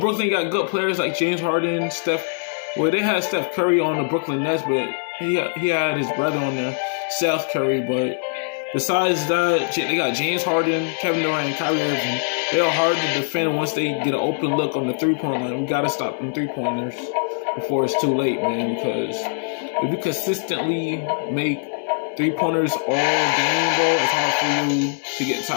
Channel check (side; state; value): right; silent; 64 dB below the other